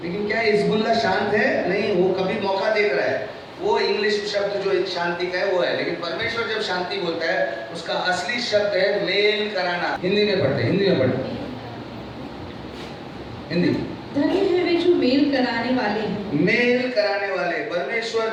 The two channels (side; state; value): both; identical; correlation 1.00